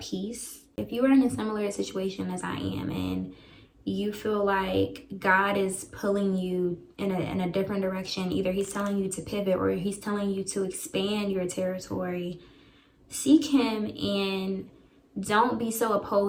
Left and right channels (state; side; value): identical; both; correlation 1.00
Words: peace. If you are in a similar situation as I am and you feel like God is pulling you in a different direction, either he's telling you to pivot or he's telling you to expand your territory, seek him and don't be so